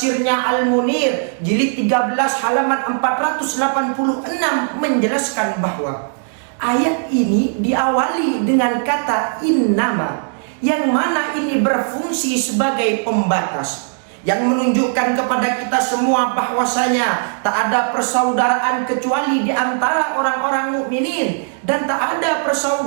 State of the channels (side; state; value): left; silent; digital silence